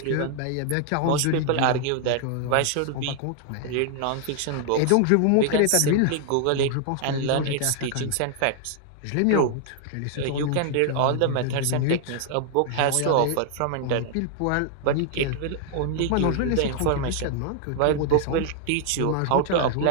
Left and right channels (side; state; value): both; different; correlation 0.00